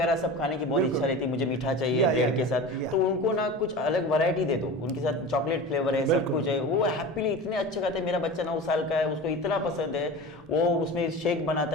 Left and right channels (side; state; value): both; normal; correlation 0.32